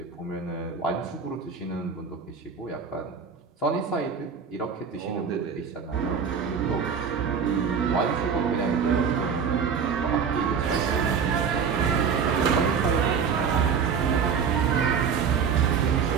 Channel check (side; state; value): left; quieter; 6.4 dB